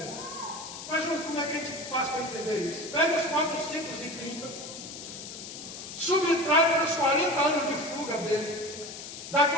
Mas, Júlio, como é que a gente faz para entender isso? Pega os 430, subtrai para os 40 anos de fuga dele. Dá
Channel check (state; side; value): noise; left; hiss, 11 dB below the sound